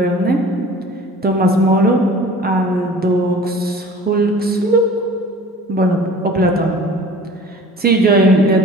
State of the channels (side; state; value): both; normal; correlation 0.44